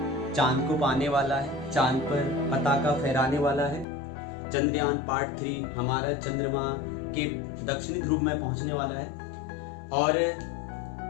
चांद को पाने वाला है, चांद पर पताका फहराने वाला है। चंद्रयान पार्ट 3 हमारा चंद्रमा के दक्षिणी ध्रुव में पहुंचने वाला है और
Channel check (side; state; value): right; drops out; at 3.9 s